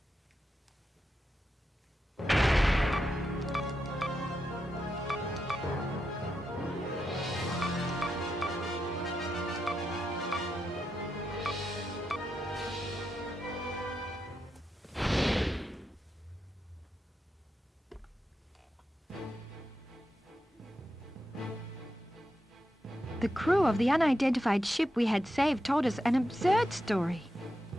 The crew of the unidentified ship we had saved told us an absurd story.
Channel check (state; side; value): normal; both; correlation 0.86